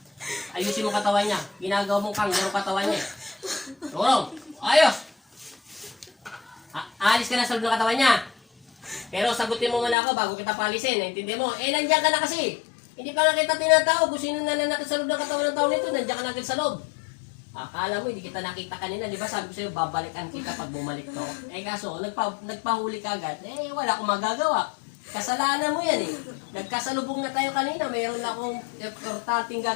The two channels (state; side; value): drops out; right; at 10.0 s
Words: Ayusin mo katawan niya. Ginagawa mong kanggaro katawan niya. Tulong. Ayos. Alis ka na sa loob ng katawan niya. Pero sagutin mo muna ako bago kita palisin. Naintindi mo? Eh, nandiyan ka na kasi. Hindi pa nga kita tinatawag. Kung sino nananakit sa loob ng katawan ng tao nito, nandiyan ka na agad sa loob. Akala mo, hindi kita nakita kanina. Di ba sabi ko sa'yo, babalikan kita pag bumalik to. Eh kaso, nagpahuli ka agad. Eh, wala akong magagawa. Kasalanan mo yan eh. Nagkasalubong na tayo kanina. Mayroon na akong importanteng